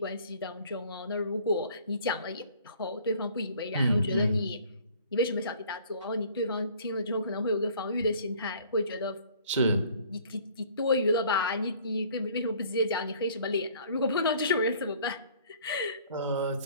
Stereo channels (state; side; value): inverted; both; correlation -0.54